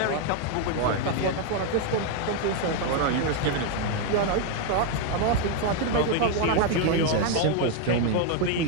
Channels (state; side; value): different; both; correlation 0.01